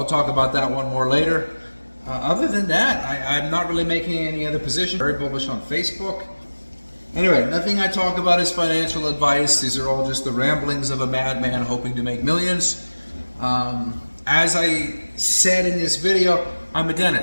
talk about that one more later. Other than that, I'm not really making any other position. Very bullish on Facebook. Anyway, nothing I talk about is financial advice. These are all just the ramblings of a madman hoping to make millions. As I said in this video, I'm a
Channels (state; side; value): inverted; both; correlation -1.00